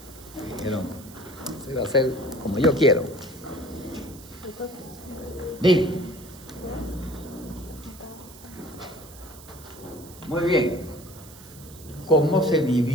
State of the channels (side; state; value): right; noise; hiss, 19 dB below the sound